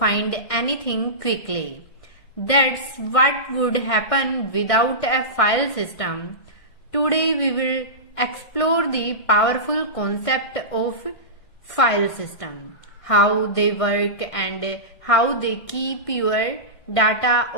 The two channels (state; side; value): late; right; 1.6 ms